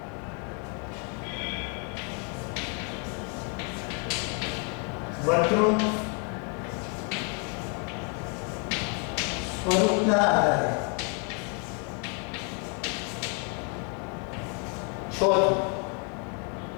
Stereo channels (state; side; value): quieter; right; 37.9 dB